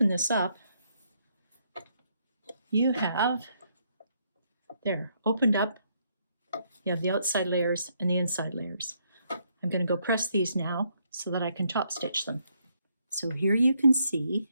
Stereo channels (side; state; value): both; inverted; correlation -0.73